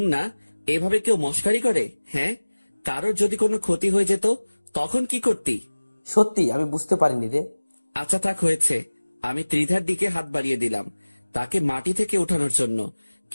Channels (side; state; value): both; inverted; correlation -1.00